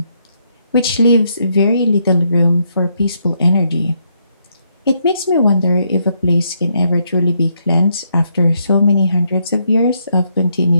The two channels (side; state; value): both; inverted; correlation -0.76